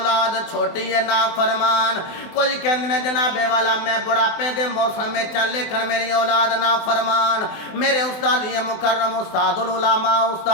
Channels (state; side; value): late; right; 24 ms